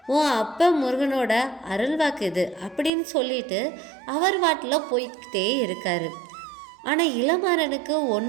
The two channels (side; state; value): left; drops out; at 2.9 s